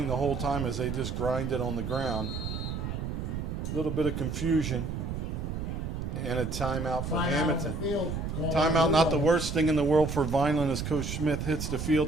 the whole time as they just grind it on the ground. A little bit of confusion. And a timeout for Hammonton. Timeout, not the worst thing in the world for Vineland as Coach Smith hits the field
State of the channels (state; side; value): noise; right; rumble, 4 dB below the sound